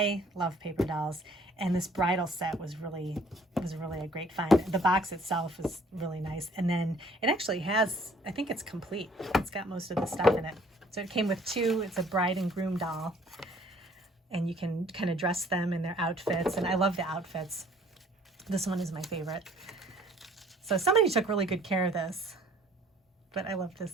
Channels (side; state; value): both; normal; correlation 0.58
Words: love paper dolls. And this bridal set was really a great find. The box itself is really nice. And then it actually has, I think it's complete. It's got most of the stuff in it. So it came with two. It's a bride and groom doll. And you can kind of dress them in their outfits. And I love the outfits. This one is my favorite. So somebody took really good care of this. But I love